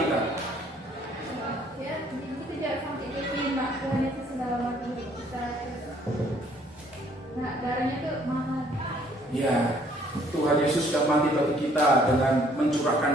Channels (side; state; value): both; normal; correlation 0.61